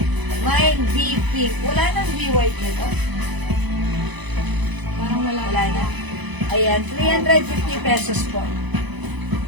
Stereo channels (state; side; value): late; left; 1.0 ms